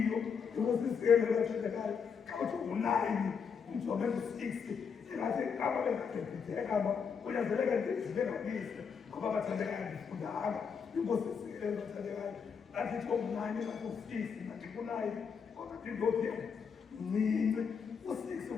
inkosi bathandekayo xa uthi u-9 umjonge u-6 engathi kama bengabhebhitheka kunyanzeleka ndibengalise ngoba bathandekayo ndifundanga inkosi isikele bathandekayo ngathi u-9 ngathi u-6 ngathi ku-9 kodwa ndindophi mncinci u-6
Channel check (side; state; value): right; quieter; 6.3 dB